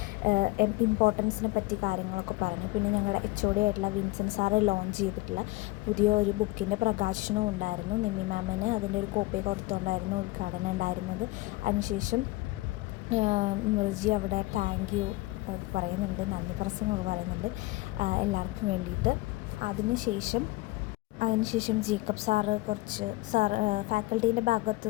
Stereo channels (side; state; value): right; quieter; 20.5 dB